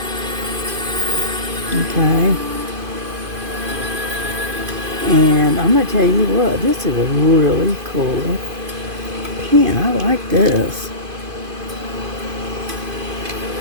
Okay. And I'm going to tell you what, this is a really cool pin. I like this.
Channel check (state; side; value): late; left; 2.5 ms